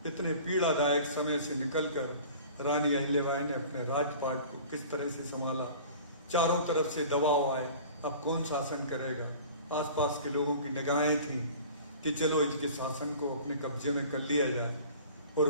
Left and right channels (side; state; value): both; inverted; correlation -0.43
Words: इतने पीड़ादायक समय से निकलकर रानी अहिल्याबाई ने अपने राजपाट को किस तरह से संभाला। चारों तरफ से दबाव आए, अब कौन शासन करेगा। आसपास के लोगों की निगाहें थीं कि चलो इनके शासन को अपने कब्जे में कर लिया जाए, और